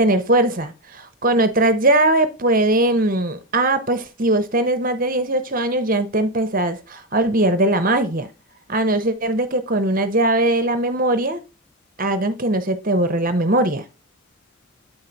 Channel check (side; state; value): both; normal; correlation 0.08